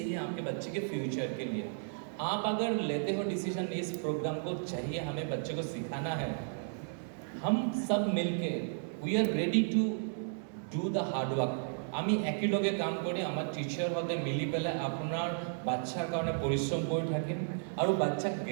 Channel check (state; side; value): silent; left; 55 dB below the other